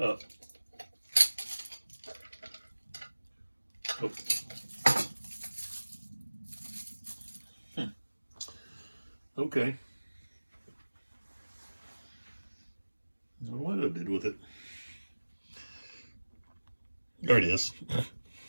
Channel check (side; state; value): both; inverted; correlation -1.00